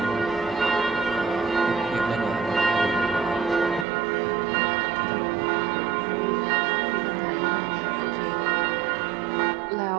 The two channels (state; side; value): drops out; left; at 3.9 s